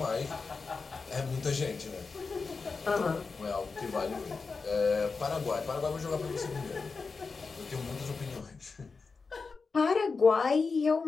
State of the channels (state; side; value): quieter; right; 4.6 dB